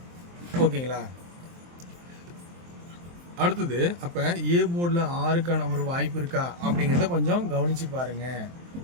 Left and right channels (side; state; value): left; late; 23 ms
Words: ஓகேங்களா? அடுத்தது, அப்போ ஏ போர்டில் 6க்கான ஒரு வாய்ப்பு இருக்கா அப்படிங்கிறத கொஞ்சம் கவனித்து பாருங்கள்